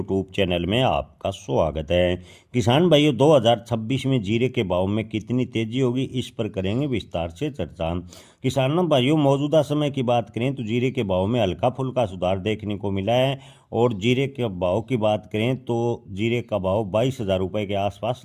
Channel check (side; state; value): both; identical; correlation 1.00